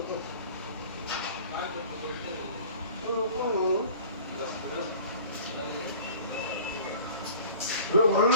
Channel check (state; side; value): inverted; both; correlation -0.44